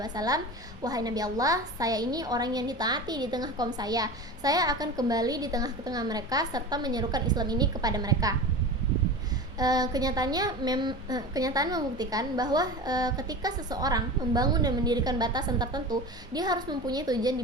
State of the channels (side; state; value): both; normal; correlation 0.31